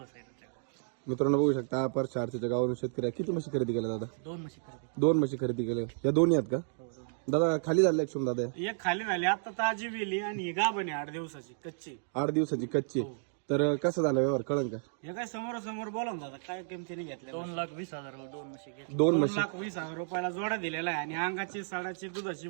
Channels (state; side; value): silent; left; digital silence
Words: साहेब. मित्रांनो बघू शकता पर चारच्या गावावरून शेतकरी आहे. किती म्हशी खरेदी केल्या दादा? दोन म्हशी खरेदी. दोन म्हशी खरेदी केल्या. या दोन्ही आहेत का हो, दोन. दादा? खाली झाले शुभम दादा? एक खाली झाली आता ताजी वेली आणि ही गाभण आहे 8 दिवसाची कच्ची. 8 दिवसाची कच्ची. तर कसं झालं व्यवहार कळन का? हे काय समोर बोला ना दादा. काय किमतीने घेतल्या? 2,20,000 दोन म्हशी घेतल्या. 2 म्हशी. 2,20,000 रुपयाला जोडा दिलेला आहे आणि अंगाची सडाची दुधाची